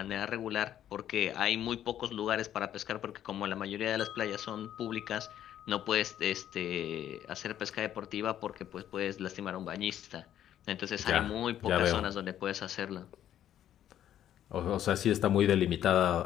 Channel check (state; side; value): quieter; right; 11.1 dB